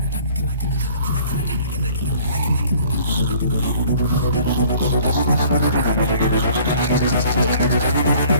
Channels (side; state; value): both; inverted; correlation -0.53